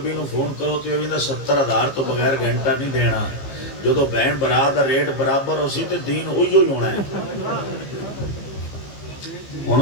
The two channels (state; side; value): late; right; 15 ms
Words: نو فون کرو تے او بھی 70,000 تو بغیر گھنٹہ نہیں دینا جدو بہن برات دا ریٹ برابر ہو سی تے دین ہوئی ہونا ہے ہن